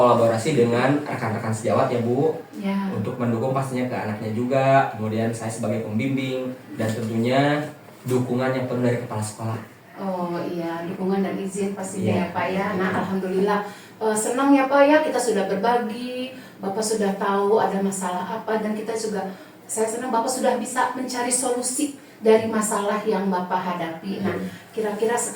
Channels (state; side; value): identical; both; correlation 1.00